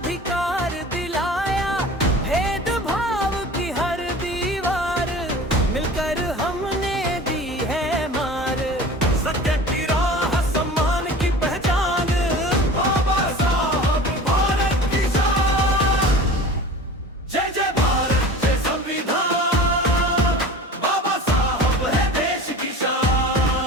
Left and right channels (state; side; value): normal; both; correlation 0.39